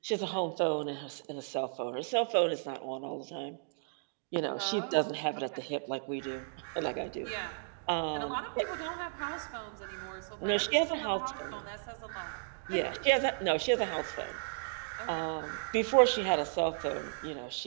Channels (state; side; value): silent; left; digital silence